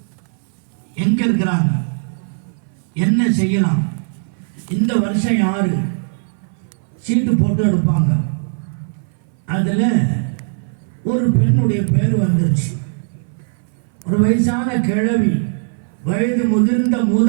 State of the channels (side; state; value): left; silent; 61 dB below the other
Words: எங்க இருக்கிறாங்க, என்ன செய்யலாம், இந்த வருஷம் யாரு சீட்டு போட்டு எடுப்பாங்க. அதுல ஒரு பெண்ணுடைய பேர் வந்துருச்சு. ஒரு வயசான கிழவி, வயது முதிர்ந்த